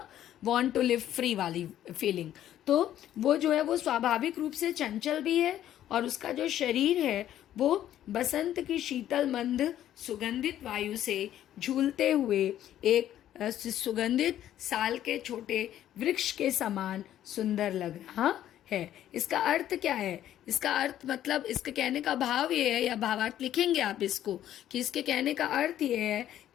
वांट टू लिव फ्री वाली फीलिंग। तो वो जो है वो स्वाभाविक रूप से चंचल भी है, और उसका जो शरीर है वो बसंत की शीतल मंद सुगंधित वायु से झूलते हुए एक सुगंधित साल के छोटे वृक्ष के समान सुंदर लग रहा है। इसका अर्थ क्या है? इसका अर्थ मतलब, इसके कहने का भाव ये है, या भावार्थ लिखेंगे आप इसको, कि इसके कहने का अर्थ ये है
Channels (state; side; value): quieter; right; 11.8 dB